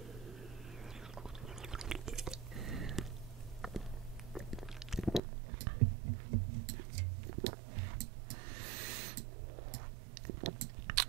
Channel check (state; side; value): drops out; left; at 5.2 s